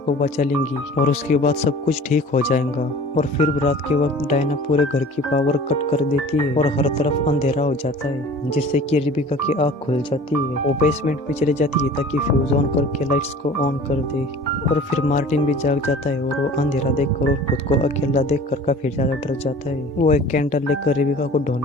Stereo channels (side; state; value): both; normal; correlation 0.44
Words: बचा लेंगी और उसके बाद सब कुछ ठीक हो जाएगा। और फिर रात के वक्त डायना पूरे घर की पावर कट कर देती है और हर तरफ अंधेरा हो जाता है, जिससे कि रेबिका की आँख खुल जाती है। वो बेसमेंट में चली जाती है ताकि फ्यूज ऑन करके लाइट्स को ऑन कर दे और फिर मार्टिन भी जाग जाता है और वो अंधेरा देखकर और खुद को अकेला देखकर काफी ज्यादा डर जाता है। वो एक कैंडल लेकर रेबिका को